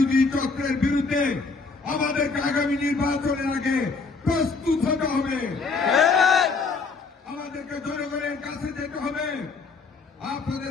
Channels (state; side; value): quieter; right; 4.3 dB